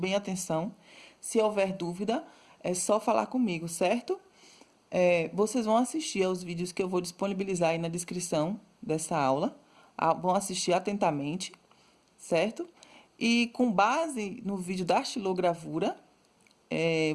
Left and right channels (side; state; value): both; identical; correlation 1.00